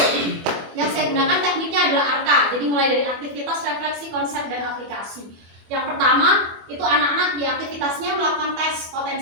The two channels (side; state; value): left; late; 25 ms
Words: yang saya gunakan tekniknya adalah ARKA. Jadi mulai dari aktivitas, refleksi, konsep, dan aplikasi. Yang pertama itu anak-anak di aktivitasnya melakukan tes